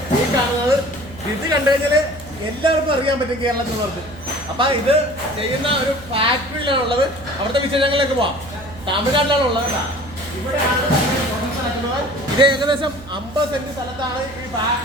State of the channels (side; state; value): right; noise; hum, 19 dB below the sound